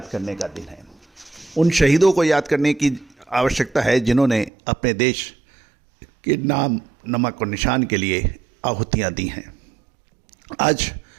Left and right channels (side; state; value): left; drops out; at 4.5 s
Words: करने का दिन है। उन शहीदों को याद करने की आवश्यकता है जिन्होंने अपने देश के नाम, नमक और निशान के लिए आहुतियां दी हैं। आज